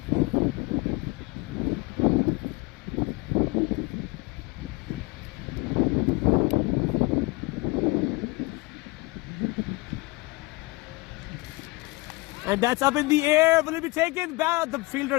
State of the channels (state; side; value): quieter; right; 23.7 dB